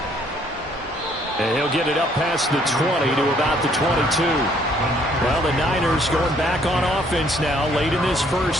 And he'll get it up past the 20 to about the 22. Well, the Niners going back on offense now late in this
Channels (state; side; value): normal; both; correlation 0.64